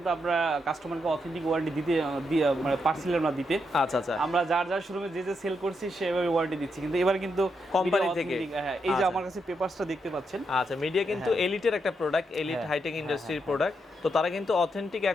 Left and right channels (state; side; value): normal; both; correlation 0.81